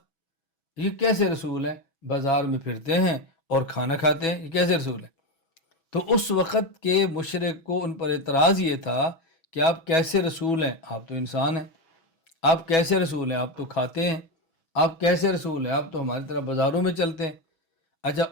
یہ کیسے رسول ہیں؟ بازار میں پھرتے ہیں اور کھانا کھاتے ہیں، یہ کیسے رسول ہیں؟ تو اس وقت کے مشرک کو ان پر اعتراض یہ تھا کہ آپ کیسے رسول ہیں؟ آپ تو انسان ہیں۔ آپ کیسے رسول ہیں؟ آپ تو کھاتے ہیں۔ آپ کیسے رسول ہیں؟ آپ تو ہماری طرح بازاروں میں چلتے ہیں۔ اچھا،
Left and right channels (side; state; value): right; late; 6.1 ms